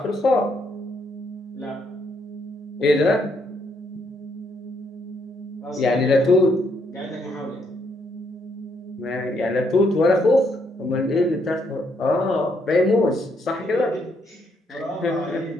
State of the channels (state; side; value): normal; both; correlation 0.74